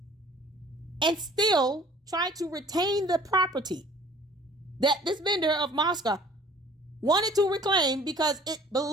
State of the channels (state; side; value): normal; both; correlation 0.52